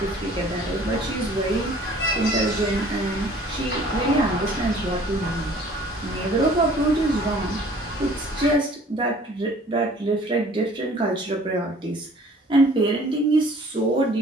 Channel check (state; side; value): normal; both; correlation 0.52